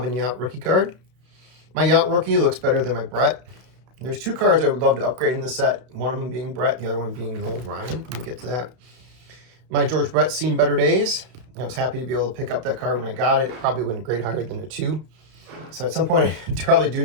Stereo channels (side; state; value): left; late; 32 ms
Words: Yount rookie card. My Yount rookie looks better than my Brett. There's two cards I would love to upgrade in the set. One of them being Brett, the other one being Noel Ryan. We'll get to that. My George Brett's seen better days. I was happy to be able to pick up that card when I got it. It probably wouldn't grade higher than a 2. So at some point, I probably do